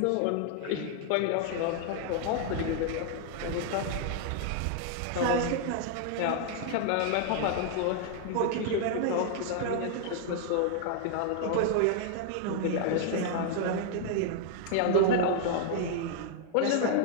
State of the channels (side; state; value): both; different; correlation -0.01